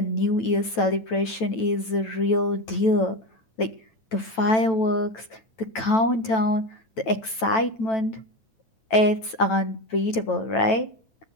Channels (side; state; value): right; late; 9.1 ms